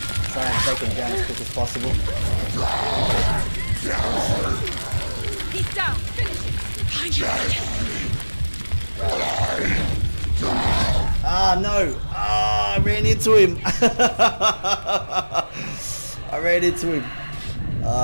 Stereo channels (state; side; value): inverted; both; correlation -1.00